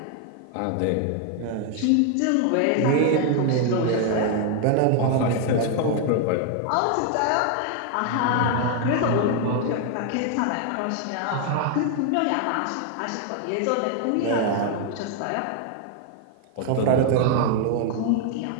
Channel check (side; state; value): both; different; correlation 0.00